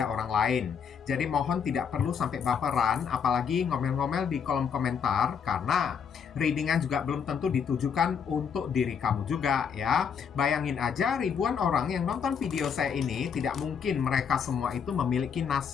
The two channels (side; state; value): right; quieter; 6.9 dB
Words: orang lain. Jadi mohon tidak perlu sampai baperan, apalagi ngomel-ngomel di kolom komentar, karena readingan juga belum tentu ditujukan untuk diri kamu juga ya. Bayangin aja ribuan orang yang nonton video saya ini, tidak mungkin mereka semua itu memiliki